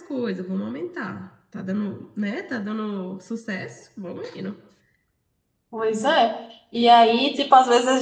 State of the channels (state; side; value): identical; both; correlation 1.00